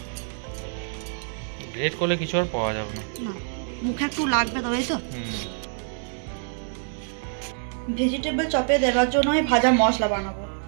গ্রেট করলে কিছু আর পাওয়া যাবে না, মুখে একটু লাগবে, তবেই তো। ভেজিটেবল চপে দেওয়ার জন্য আমি ভাজা মশলা বানাবো,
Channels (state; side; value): silent; left; digital silence